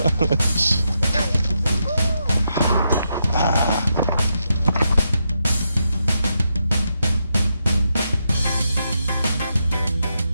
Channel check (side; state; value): both; inverted; correlation -0.83